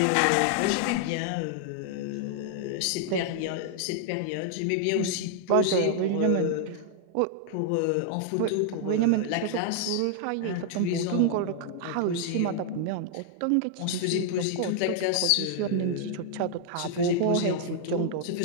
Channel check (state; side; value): different; both; correlation 0.00